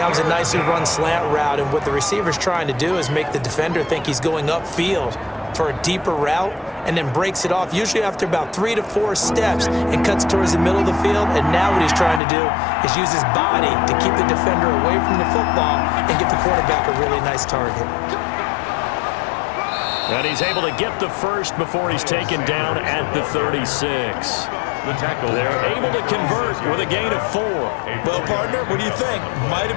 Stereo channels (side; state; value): right; drops out; at 12.2 s